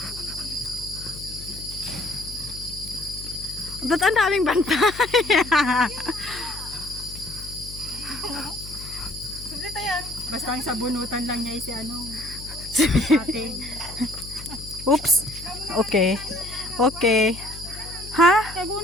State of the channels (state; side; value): noise; left; hum, 13 dB below the sound